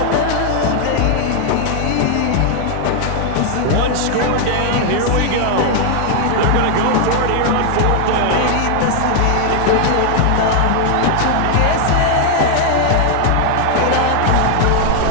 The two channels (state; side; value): different; both; correlation 0.00